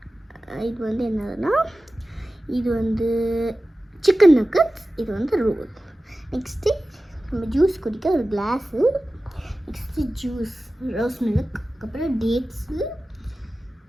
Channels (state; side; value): normal; both; correlation 0.95